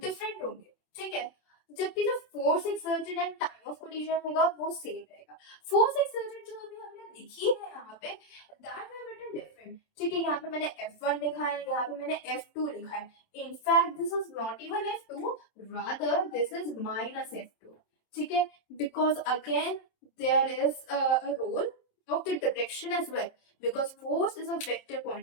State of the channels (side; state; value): right; late; 27 ms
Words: होंगे। ठीक है, जबकि जो force exerted and time of collision होगा वो सेम रहेगा। फोर्स एक्सर्टेड जो हमने लिखी है यहाँ पे दैट वी रिटन डिफरेंट। ठीक है, यहाँ पे मैंने F1 लिखा है, यहाँ पे मैंने F2 लिखा है। In fact this is not even F2, rather this is minus F2। ठीक है, because again there is a role of the direction as well because force is a vector